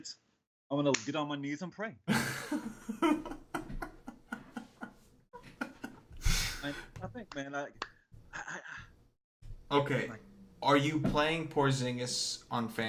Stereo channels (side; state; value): both; identical; correlation 1.00